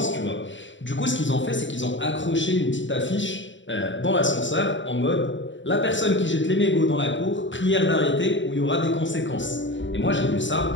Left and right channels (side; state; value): right; late; 0.54 ms